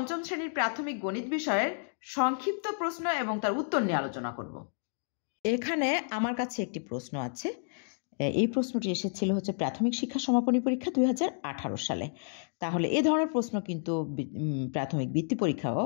শ্রেণীর প্রাথমিক গণিত বিষয়ের সংক্ষিপ্ত প্রশ্ন এবং তার উত্তর নিয়ে আলোচনা করব। এখানে আমার কাছে একটি প্রশ্ন আছে। এই প্রশ্নটি এসেছিল প্রাথমিক শিক্ষা সমাপনী পরীক্ষা 2018 সালে। তাহলে এ ধরনের প্রশ্ন কিন্তু প্রাথমিক বৃত্তি পরীক্ষাও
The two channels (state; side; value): silent; right; digital silence